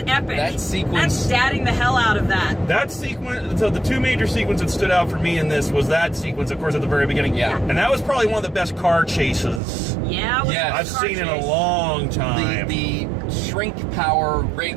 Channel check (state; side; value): drops out; left; at 9.6 s